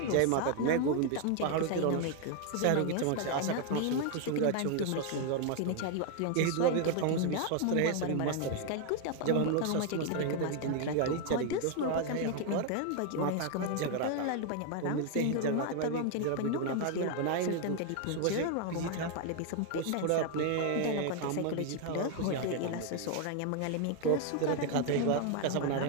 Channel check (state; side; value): different; both; correlation 0.01